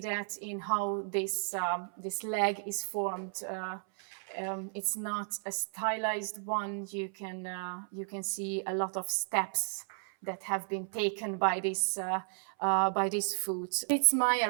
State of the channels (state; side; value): silent; left; 55 dB below the other